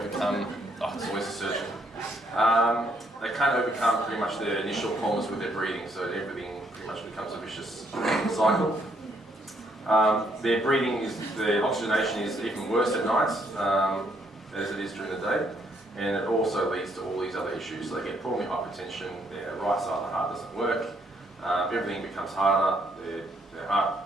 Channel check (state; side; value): normal; both; correlation 0.71